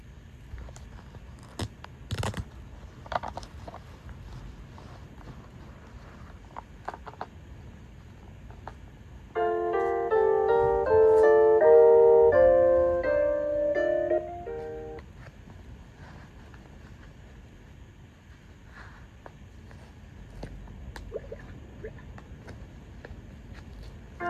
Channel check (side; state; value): both; identical; correlation 1.00